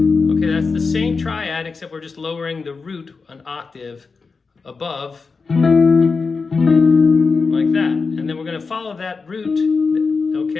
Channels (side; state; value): right; quieter; 4.6 dB